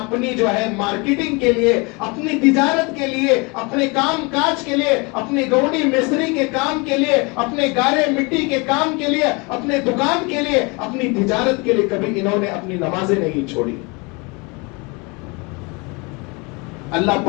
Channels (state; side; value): quieter; right; 28.6 dB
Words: جو ہے مارکیٹنگ کے لیے، اپنی تجارت کے لیے، اپنے کام کاج کے لیے، اپنی گوڑی مستری کے کام کے لیے، اپنے گارے مٹی کے کام کے لیے، اپنے دکان کے لیے، اپنی تجارت کے لیے کبھی انہوں نے اپنی نمازیں نہیں چھوڑی۔ اللہ